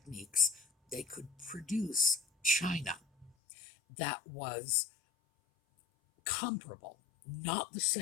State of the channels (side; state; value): right; drops out; at 3.3 s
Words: They could produce china that was comparable, not the